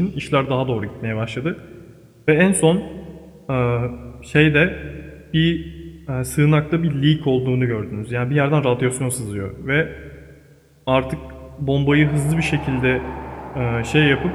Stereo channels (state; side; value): identical; both; correlation 1.00